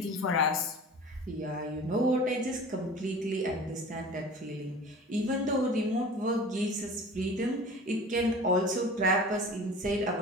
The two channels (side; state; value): both; normal; correlation 0.40